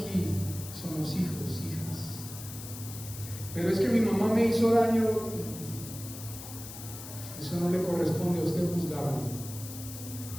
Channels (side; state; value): left; noise; hiss, 12 dB below the sound